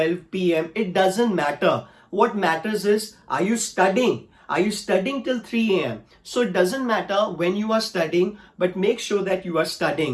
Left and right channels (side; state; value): both; identical; correlation 1.00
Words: p.m., it doesn't matter. What matters is, are you studying? Are you studying till 3 a.m.? So it doesn't matter when you are studying, but make sure that you are